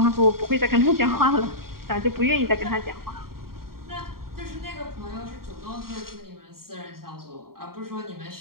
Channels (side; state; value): left; late; 0.93 ms